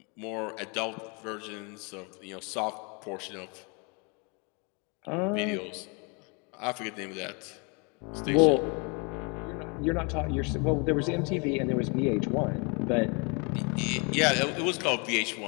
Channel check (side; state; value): right; quieter; 32.6 dB